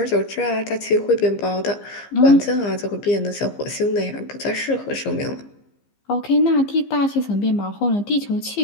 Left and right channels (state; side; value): late; right; 15 ms